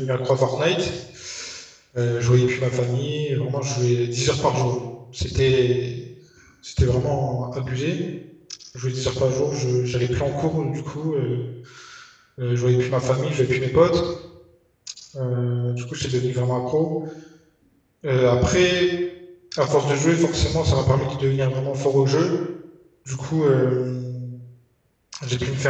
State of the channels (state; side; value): identical; both; correlation 1.00